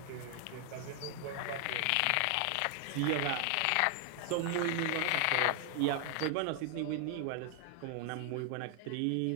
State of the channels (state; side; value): different; both; correlation 0.00